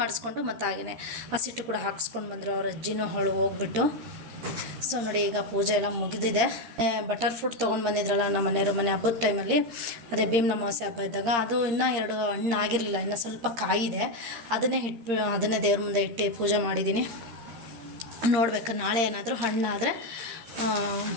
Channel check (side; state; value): left; late; 13 ms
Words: ಮಾಡಿಸ್ಕೊಂಡು ಮತ್ತು ಹಾಗೆಯೇ ಹಸಿಟ್ಟು ಕೂಡ ಹಾಕ್ಸ್ಕೊಂಡು ಬಂದರು. ಅವ್ರ ಅಜ್ಜಿನೂ ಹೋಗ್ಬಿಟ್ಟು. ಸೊ ನೋಡಿ, ಈಗ ಪೂಜೆ ಎಲ್ಲ ಮುಗಿದಿದೆ. ಬಟರ್ ಫ್ರೂಟ್ ತೊಗೊಂಡು ಬಂದಿದ್ರಲ್ಲ ನಮ್ಮ ಮನೆಯವರು ಮನೆ ಹಬ್ಬದ ಟೈಮಲ್ಲಿ, ಅದೇ ಭೀಮನ ಅಮಾವಾಸ್ಯೆ ಹಬ್ಬ ಇದ್ದಾಗ. ಅದು ಇನ್ನೂ 2 ಹಣ್ಣು ಆಗಿರಲಿಲ್ಲ, ಇನ್ನೂ ಸ್ವಲ್ಪ ಕಾಯಿದೆ. ಅದನ್ನೇ ದೇವ್ರ ಮುಂದೆ ಇಟ್ಟು ಪೂಜೆ ಮಾಡಿದ್ದೀನಿ. ನೋಡ್ಬೇಕು, ನಾಳೆ ಏನಾದರೂ ಹಣ್ಣಾದರೆ